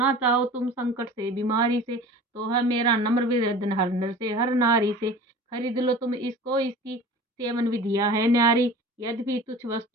चाहो तुम संकट से बीमारी से, तो है मेरा नम्र निवेदन हर नर से हर नारी से, खरीद लो तुम इसको इसकी सेवन विधियां है न्यारी। यद्यपि तुच्छ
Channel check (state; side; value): normal; both; correlation 0.40